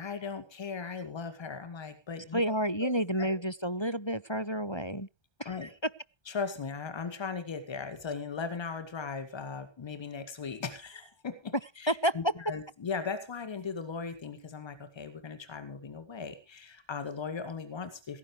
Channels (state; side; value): late; right; 1.3 ms